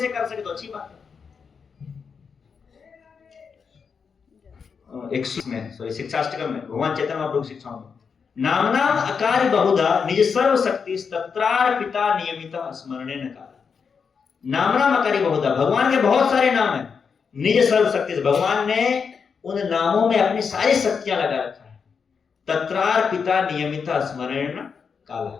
कर सके तो अच्छी बात है। 16 में भगवान चैतन्य महाप्रभु की शिक्षाओं में नाम अकार बहुधा निज सर्व शक्ति तत्रार पिता नियमित स्मरणे न काल। नाम अकारी बहुधा, भगवान के बहुत सारे नाम हैं। निज सर्व शक्ति, भगवान ने उन नामों में अपनी सारी शक्तियां लगा रखा है। तत्रार पिता नियमित स्मरण काल,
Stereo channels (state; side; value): quieter; right; 6.0 dB